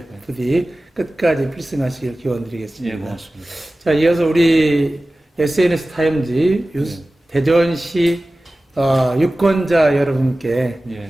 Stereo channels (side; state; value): both; normal; correlation 0.96